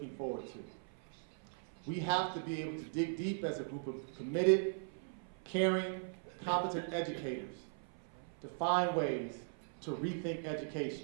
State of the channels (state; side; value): silent; left; 52 dB below the other